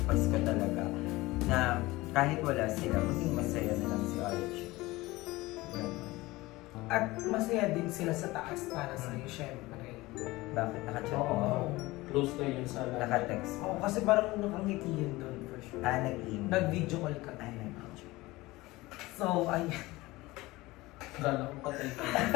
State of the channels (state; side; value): quieter; right; 20.1 dB